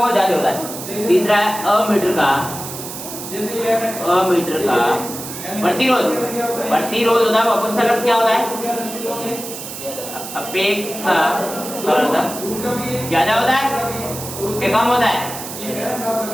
ज्यादा होता है। तीसरा है अमीटर का प्रतिरोध होता है वो अपेक्षाकृत क्या होता है? अपेक्षाकृत ज्यादा होता है, उसके कम होता है।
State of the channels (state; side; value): noise; right; hiss, 9 dB below the sound